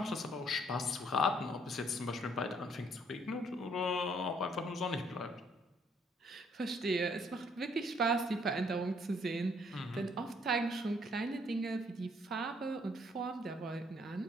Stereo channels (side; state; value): both; normal; correlation 0.66